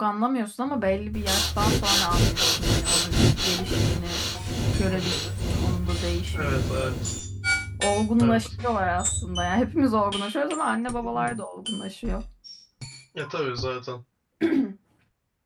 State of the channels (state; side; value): identical; both; correlation 1.00